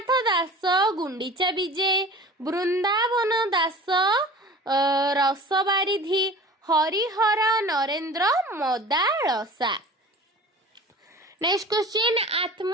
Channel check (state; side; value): normal; both; correlation 0.40